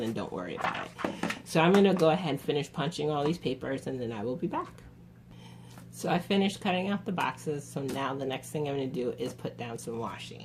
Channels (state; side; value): identical; both; correlation 1.00